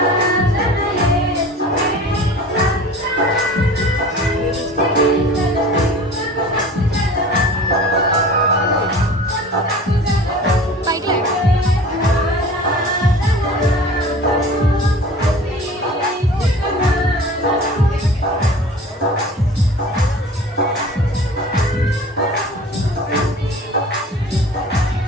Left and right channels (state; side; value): normal; both; correlation 0.42